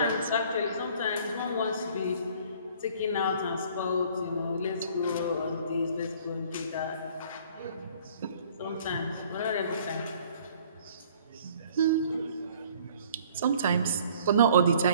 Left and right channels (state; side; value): inverted; both; correlation -0.55